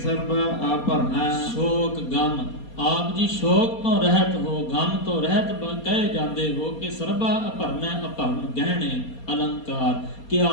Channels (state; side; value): late; right; 4.3 ms